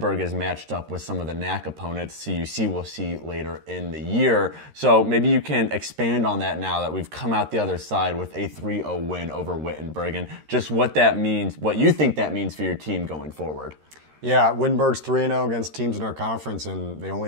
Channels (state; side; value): late; left; 13 ms